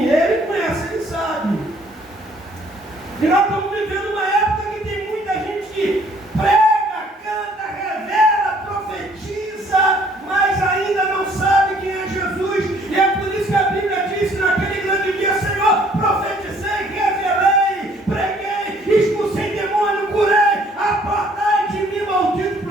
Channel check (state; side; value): normal; both; correlation 0.60